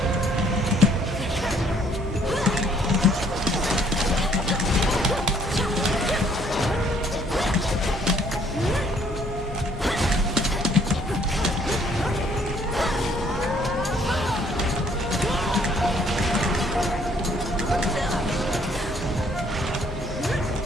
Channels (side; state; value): both; normal; correlation 0.63